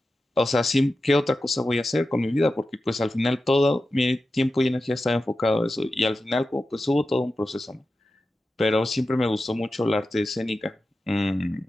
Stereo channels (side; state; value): both; normal; correlation 0.92